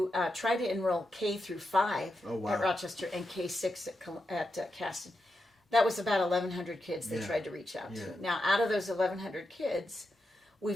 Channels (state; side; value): normal; both; correlation 0.87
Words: try to enroll K through 5 at Rochester and K6 at Caston. That was about 1,100 kids they tried to reach out to. Now, out of those 1,100 kids,